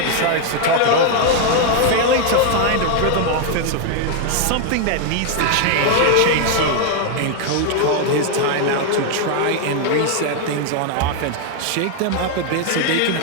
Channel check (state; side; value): different; both; correlation 0.00